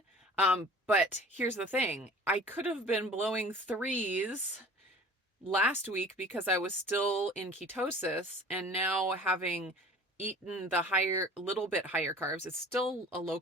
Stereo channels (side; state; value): both; normal; correlation 0.45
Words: But here's the thing. I could have been blowing 3s last week because I was still in ketosis, and now having eaten the little bit higher carbs, it's still a low